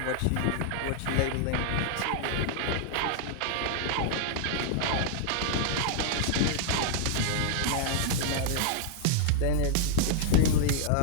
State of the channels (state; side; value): different; both; correlation -0.01